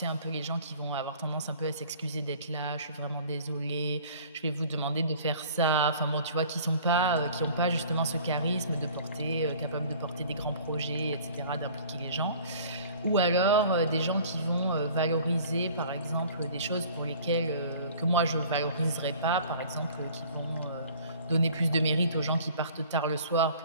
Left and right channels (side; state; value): both; inverted; correlation -0.49